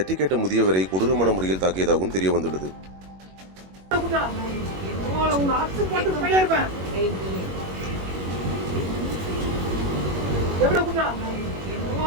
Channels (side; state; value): left; late; 21 ms